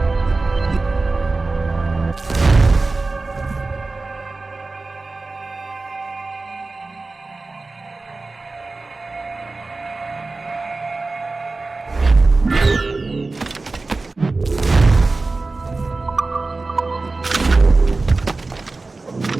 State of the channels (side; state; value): left; quieter; 3.5 dB